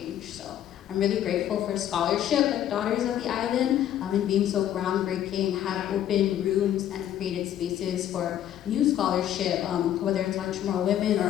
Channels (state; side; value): quieter; right; 11.1 dB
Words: So I'm really grateful for scholarship like Daughters of the Island, and being so groundbreaking, have opened rooms and created spaces for new scholarship, whether it's on Chamorro women